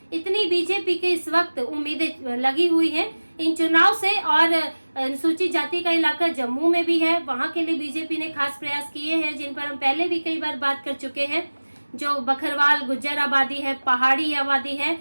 इतनी बीजेपी के इस वक्त उम्मीदें लगी हुई हैं इन चुनाव से। और अनुसूचित जाति का इलाका जम्मू में भी है, वहां के लिए बीजेपी ने खास प्रयास किए हैं, जिन पर हम पहले भी कई बार बात कर चुके हैं। जो बकरवाल गुज्जर आबादी है, पहाड़ी आबादी है,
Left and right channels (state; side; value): inverted; both; correlation -1.00